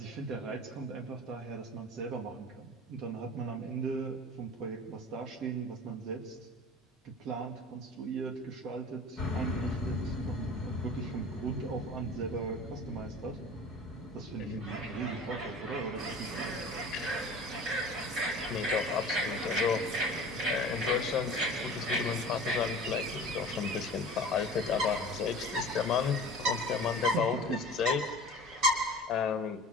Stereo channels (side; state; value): both; normal; correlation 0.40